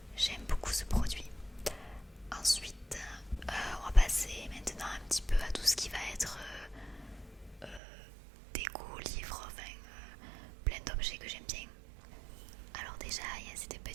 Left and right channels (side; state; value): left; drops out; at 7.8 s